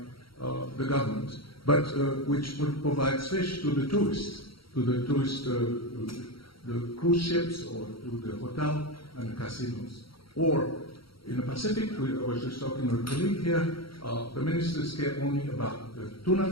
the government, but which provides fish to the tourists, the cruise ships, or to the hotel and the casinos. Or in the Pacific, I was just talking with a colleague here, the ministers care only about the tuna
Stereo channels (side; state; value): right; late; 0.74 ms